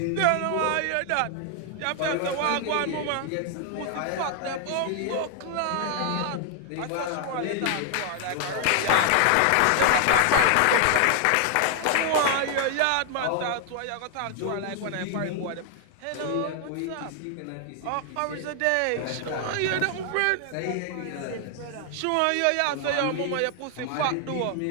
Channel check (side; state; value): both; different; correlation 0.00